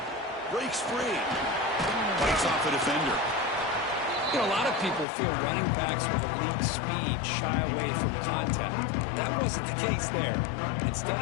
Breaks free. Bites off the defender. You know, a lot of people feel running backs with elite speed shy away from contact. That wasn't the case there. Instead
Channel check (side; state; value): right; drops out; at 5.1 s